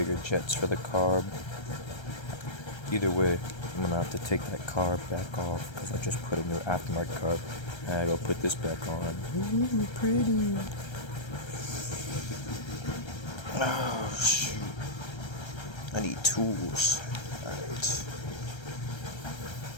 jets for the carb. Either way, I'm gonna have to take that carb back off because I just put a new aftermarket carb. And I gotta put this back on. Ooh, pretty. Oh shoot. I need tools. Alright.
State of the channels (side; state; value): right; late; 1.3 ms